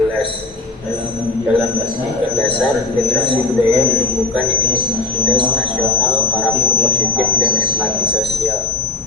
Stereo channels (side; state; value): right; quieter; 3.3 dB